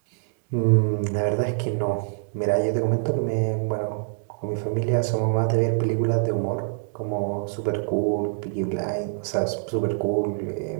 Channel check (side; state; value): left; silent; digital silence